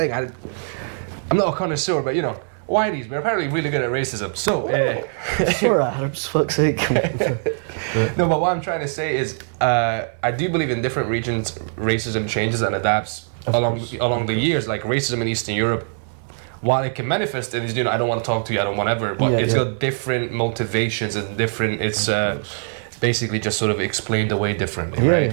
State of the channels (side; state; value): left; silent; digital silence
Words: I'm not a connoisseur, but you know, whiteys, we're apparently really good at racism. So, for Arabs, fuck's sake. No, but what I'm trying to say is, I do believe in different regions, racism changes and adapts along the years. Like racism in Eastern Europe, while it can manifest in, you know, I don't want to talk to you, I don't want ever, but it's got different motivations and different. It's basically just sort of explained away differently,